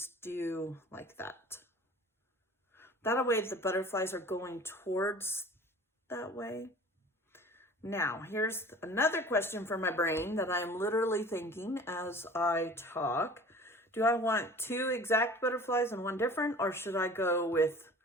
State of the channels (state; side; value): normal; both; correlation 0.44